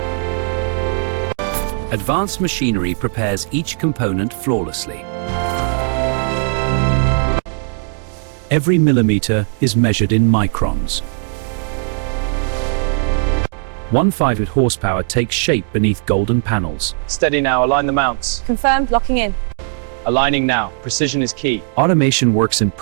Advanced machinery prepares each component flawlessly. Every millimeter is measured in microns. 1/5 horsepower takes shape beneath golden panels. Steady now, align the mounts. Confirmed. Locking in. Aligning now, precision is key. Automation works in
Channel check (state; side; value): silent; left; digital silence